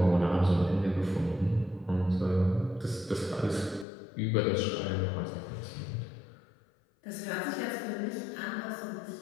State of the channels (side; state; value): right; drops out; at 3.9 s